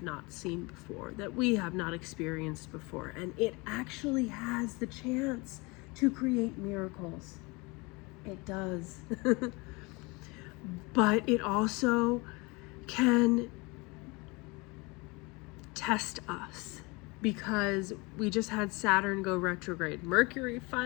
not seen before, that we have not experienced before. And it actually has the chance to create miracles. It does. But it also can test us, because we just had Saturn go retrograde. Mercury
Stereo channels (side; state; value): right; quieter; 26.4 dB